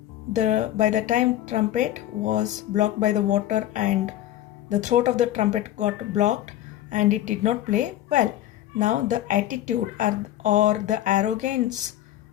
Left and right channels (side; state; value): right; quieter; 13.1 dB